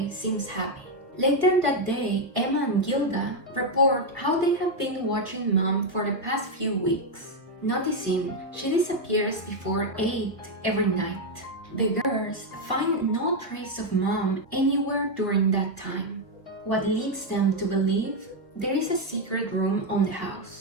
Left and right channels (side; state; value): both; normal; correlation 0.03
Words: seems happy. Later that day, Emma and Gilda report how they have been watching Mom for the past few weeks, noticing she disappears before 8 every night. The girls find no trace of Mom anywhere during that time, what leads them to believe there is a secret room on the